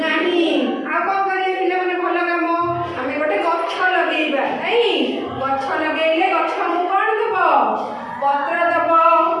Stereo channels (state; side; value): identical; both; correlation 1.00